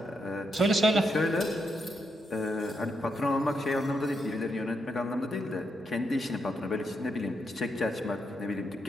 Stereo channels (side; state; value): both; normal; correlation 0.81